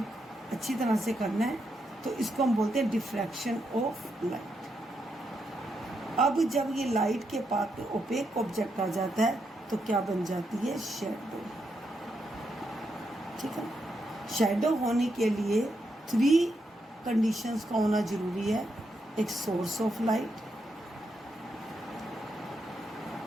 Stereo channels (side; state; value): both; normal; correlation 0.81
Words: अच्छी तरह से करना है, तो इसको हम बोलते हैं डिफ्रैक्शन ऑफ लाइट। अब जब ये लाइट के पाथ में ओपेक ऑब्जेक्ट आ जाता है तो क्या बन जाती है? शैडो। ठीक है, शैडो होने के लिए 3 कंडीशंस का होना जरूरी है। एक सोर्स ऑफ लाइट,